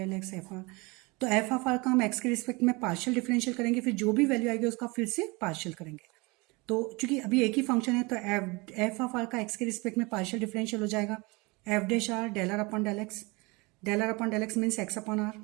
F R. तो एफ ऑफ आर का हम एक्स के रिस्पेक्ट में पार्शियल डिफरेंशियल करेंगे, फिर जो भी वैल्यू आएगी उसका फिर से पार्शियल करेंगे। तो चूंकि अभी एक ही फंक्शन है तो एफ ऑफ आर का एक्स के रिस्पेक्ट में पार्शियल डिफरेंशियल हो जाएगा F dash R del are upon del X means X upon are,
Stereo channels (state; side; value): quieter; left; 26.0 dB